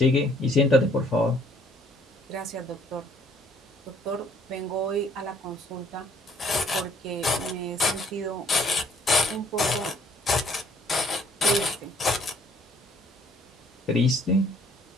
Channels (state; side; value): normal; both; correlation 0.61